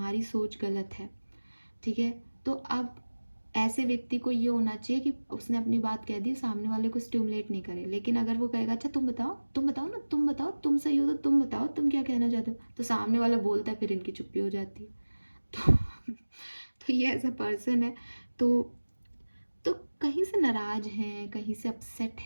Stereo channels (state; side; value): inverted; both; correlation -1.00